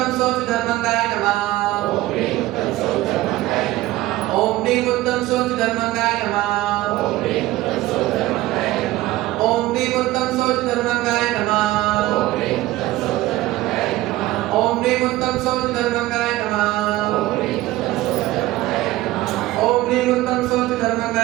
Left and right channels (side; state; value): left; quieter; 17.0 dB